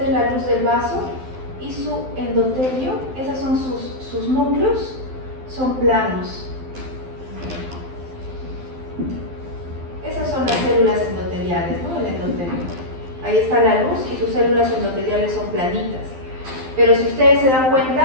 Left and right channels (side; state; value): left; late; 12 ms